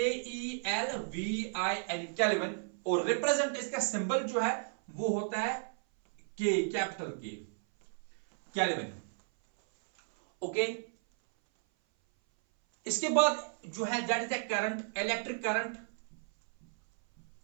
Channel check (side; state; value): left; silent; 55 dB below the other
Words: केल्विन। और रिप्रेजेंट इसका सिंबल जो है वो होता है K, capital K, kelvin. Okay, इसके बाद जो है that is the current, electric current.